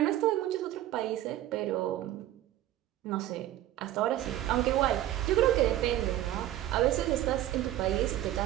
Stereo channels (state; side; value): quieter; left; 13.7 dB